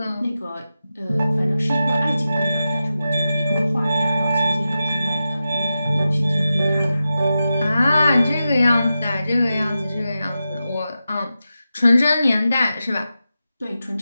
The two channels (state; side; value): inverted; both; correlation -0.91